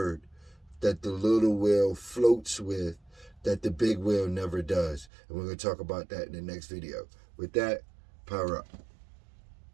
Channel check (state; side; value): drops out; left; at 5.1 s